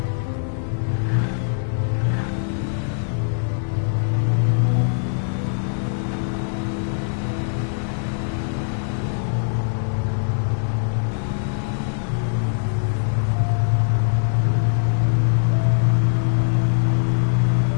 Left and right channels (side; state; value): right; silent; digital silence